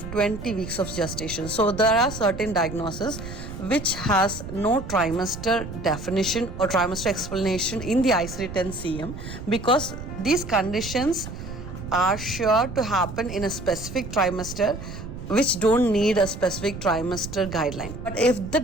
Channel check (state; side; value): noise; right; rumble, 10 dB below the sound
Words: 20 weeks of gestation. So there are certain diagnoses which has no trimester definition or trimester explanation in the ICD-10-CM because these conditions are sure to happen in a specific trimester which don't need a specific trimester guideline. But if the